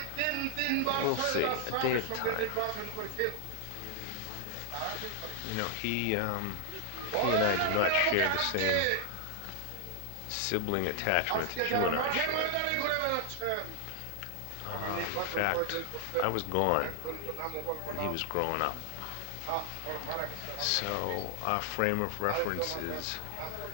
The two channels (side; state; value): both; different; correlation 0.01